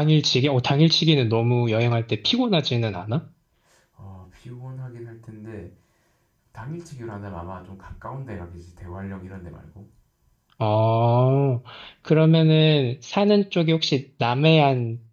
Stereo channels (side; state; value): both; identical; correlation 1.00